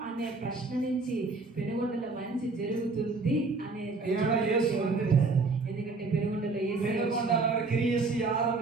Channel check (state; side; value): quieter; left; 3.8 dB